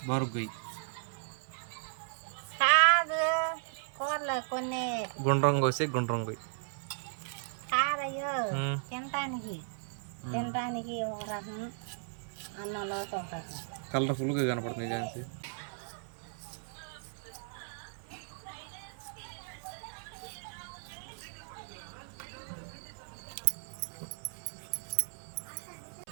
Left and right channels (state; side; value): silent; left; 54 dB below the other